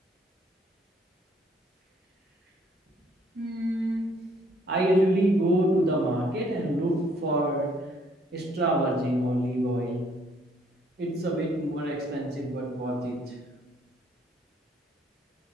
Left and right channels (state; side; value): normal; both; correlation 0.65